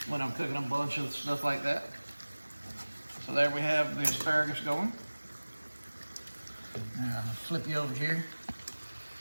when I'm cooking a bunch of stuff like that. So there we have the asparagus going. Now I'll flip you over here.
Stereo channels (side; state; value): both; inverted; correlation -1.00